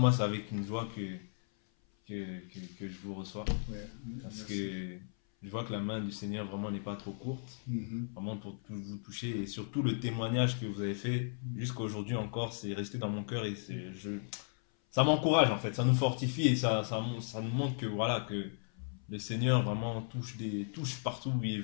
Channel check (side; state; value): right; silent; 54 dB below the other